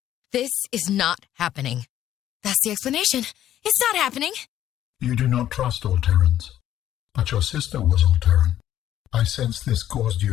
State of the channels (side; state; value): right; quieter; 11.8 dB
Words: This is not happening. That's the explanation. It's not happening. You do not trust Alterrans, but your sister was Alterran. I sense this caused